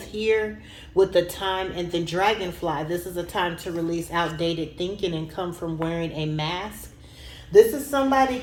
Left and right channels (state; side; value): identical; both; correlation 1.00